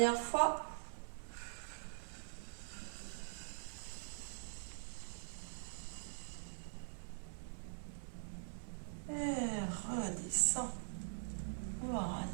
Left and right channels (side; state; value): left; silent; digital silence